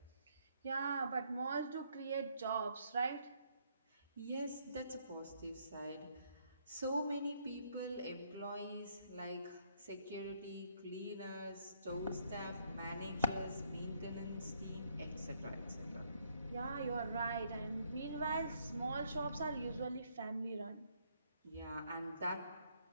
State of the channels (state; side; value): inverted; both; correlation -0.70